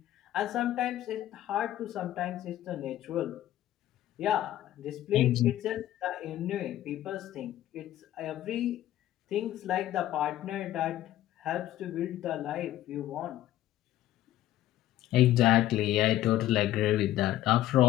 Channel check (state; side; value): quieter; right; 13.6 dB